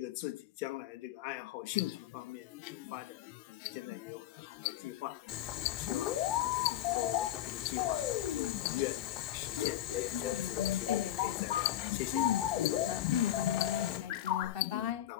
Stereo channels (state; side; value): quieter; right; 12.7 dB